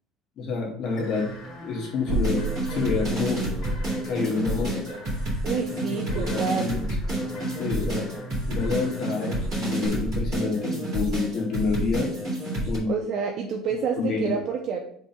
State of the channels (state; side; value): normal; both; correlation 0.54